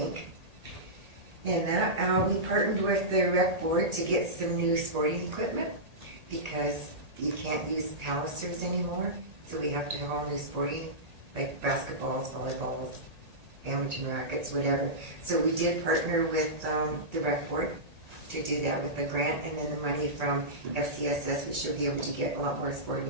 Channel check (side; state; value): left; late; 1.8 ms